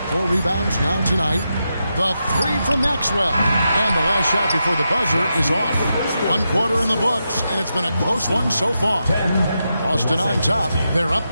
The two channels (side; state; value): both; inverted; correlation -0.87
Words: 4 rebounds now tonight. The 3 from Maxwell. And the last shot before the buzzer is off. 1 quarter in the books, and it's been a close one so far. Boston on top. They're up